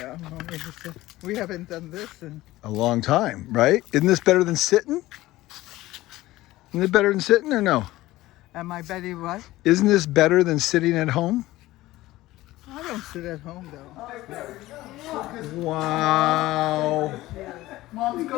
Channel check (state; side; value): quieter; right; 17.2 dB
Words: We haven't done this in A long time, right? Isn't this better than sitting? Isn't it better than sitting or no? Am I Betty what? Isn't this better than sitting at home? I don't sit at home though. Wow. Mom,